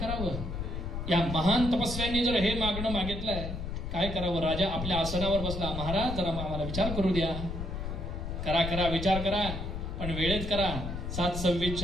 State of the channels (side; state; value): left; noise; rumble, 5 dB below the sound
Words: या महान तपस्व्यांनी जर हे मागणं मागितलंय काय करावं राजा आपल्या आसनावर बसला महाराज जरा आम्हाला विचार करू द्या करा करा विचार करा पण वेळेत करा